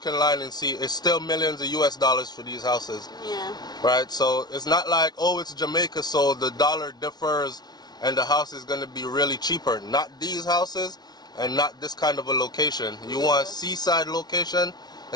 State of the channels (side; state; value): right; late; 0.19 ms